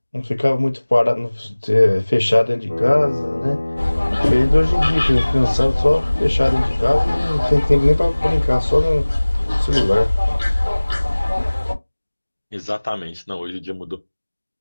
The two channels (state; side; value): inverted; both; correlation -1.00